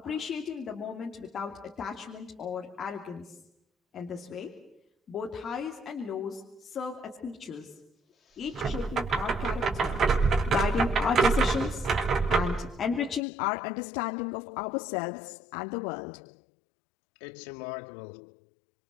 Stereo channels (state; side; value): drops out; right; at 13.2 s